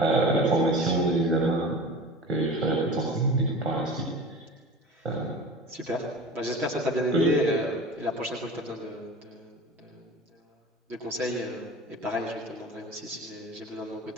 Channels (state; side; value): normal; both; correlation 0.36